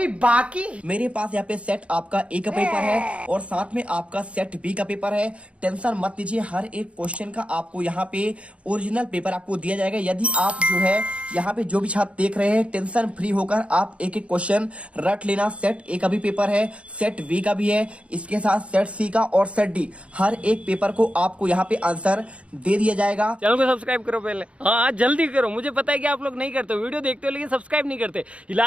बाकी। मेरे पास यहाँ पे सेट आपका ए का पेपर है और साथ में आपका सेट बी का पेपर है। टेंशन मत लीजिए, हर एक क्वेश्चन का आपको यहाँ पे ओरिजिनल पेपर आपको दिया जाएगा। यदि आप जो है यहाँ पे जो भी छात्र देख रहे हैं, टेंशन फ्री होकर आप एक एक क्वेश्चन रट लेना। सेट ए का भी पेपर है, सेट बी का भी है, इसके साथ सेट सी का और सेट डी, हर एक पेपर को आपको यहाँ पे आंसर दे दिया जाएगा। चैनल को सब्सक्राइब करो पहले, हाँ जल्दी करो। मुझे पता है कि आप लोग नहीं करते, वीडियो देखते हो लेकिन सब्सक्राइब नहीं करते। ये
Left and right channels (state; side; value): late; left; 0.061 ms